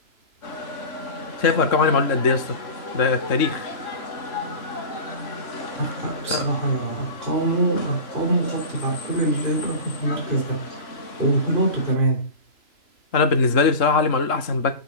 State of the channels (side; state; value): right; late; 3.0 ms